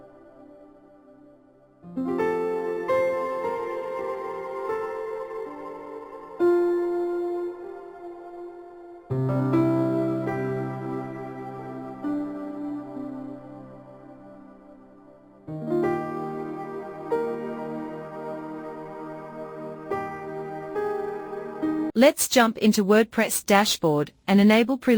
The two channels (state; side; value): identical; both; correlation 1.00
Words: Let's jump into WordPress dashboard and enable